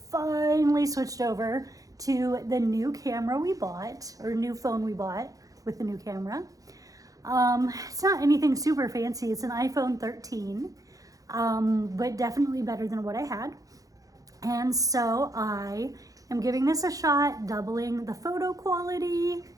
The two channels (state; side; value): late; left; 0.17 ms